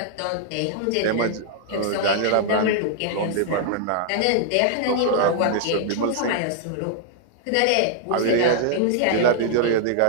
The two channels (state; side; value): different; both; correlation 0.00